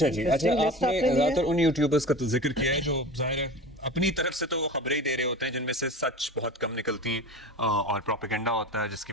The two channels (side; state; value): both; normal; correlation 0.34